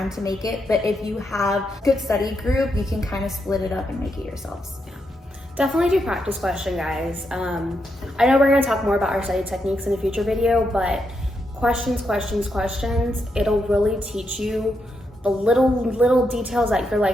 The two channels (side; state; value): both; normal; correlation 0.82